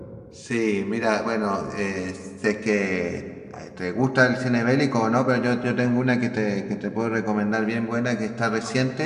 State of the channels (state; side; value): identical; both; correlation 1.00